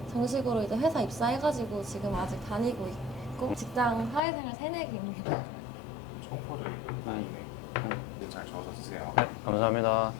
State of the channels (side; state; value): right; drops out; at 4.2 s